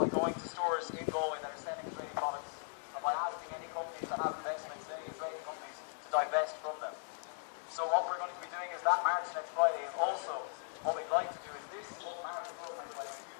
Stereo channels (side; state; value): right; silent; digital silence